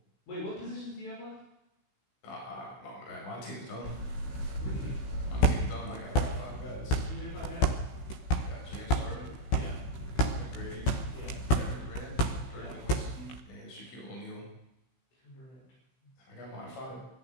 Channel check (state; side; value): late; right; 16 ms